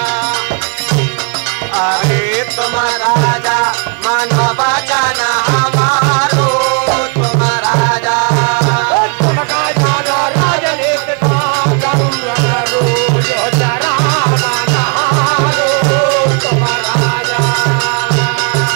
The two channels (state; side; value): quieter; left; 37.4 dB